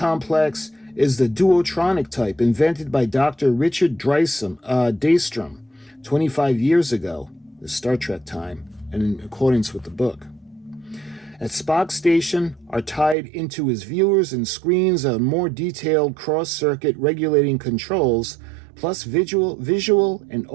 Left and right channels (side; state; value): left; drops out; at 13.2 s